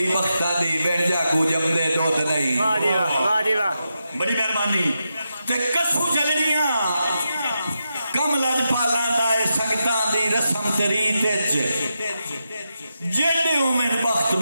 بختہ دی بیٹھ جا کو جم دے دود نہیں واہ جی واہ بڑی مہربانی تے کسو جلنیاں کم لج پالاں دائے سنگتاں دی رسم تریت جیڑے اومن بخت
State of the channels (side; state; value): both; inverted; correlation -0.87